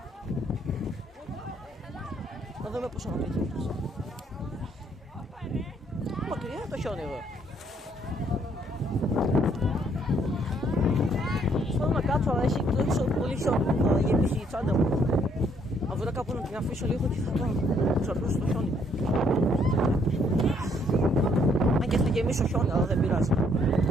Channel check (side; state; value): both; normal; correlation 0.67